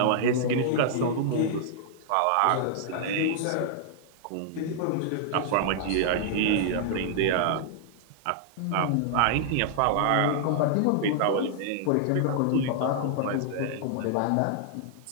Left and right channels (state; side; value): different; both; correlation -0.01